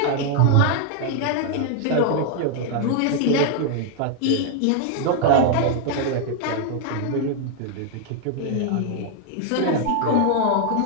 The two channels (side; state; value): both; different; correlation 0.00